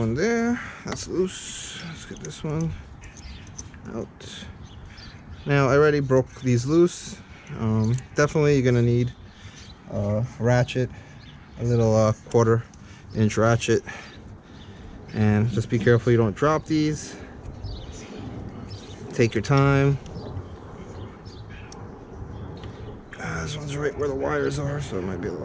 there, that's loose. Let's get this one out. Now I already broke these loose. Definitely you're gonna need a ratchet, a little 1/4 inch ratchet, and just be careful you don't drop these. Take your time. This one's right where the wires are, so it might be a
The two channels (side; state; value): both; identical; correlation 1.00